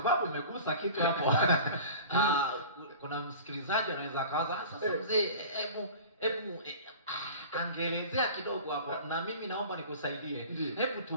umegusa kitu hapo. Kuna msikilizaji anaweza akawaza, sasa mzee, hebu angeelezea kidogo hapo na mimi naomba nikusaidie.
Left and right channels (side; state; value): both; inverted; correlation -0.40